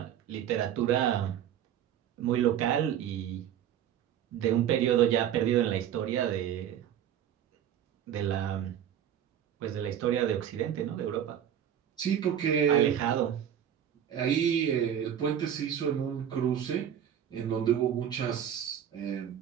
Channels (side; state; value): left; quieter; 9.8 dB